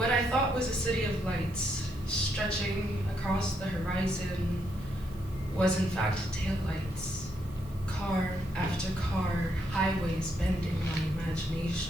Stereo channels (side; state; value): right; noise; hiss, 25 dB below the sound